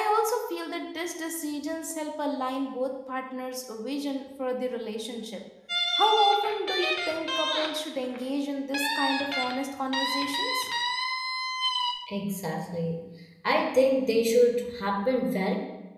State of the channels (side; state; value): both; identical; correlation 1.00